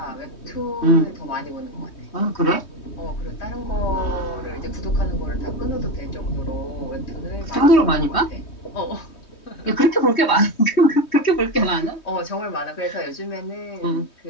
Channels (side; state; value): right; late; 3.2 ms